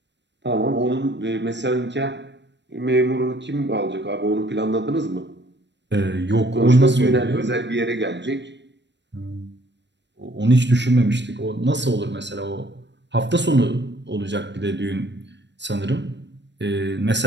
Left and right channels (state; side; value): late; left; 0.52 ms